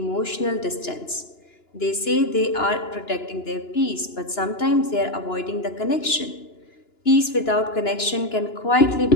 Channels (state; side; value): late; right; 2.9 ms